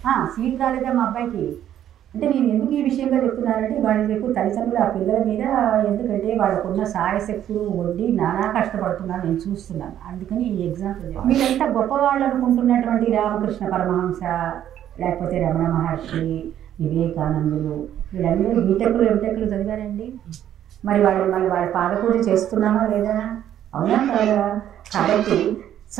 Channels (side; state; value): left; quieter; 11.0 dB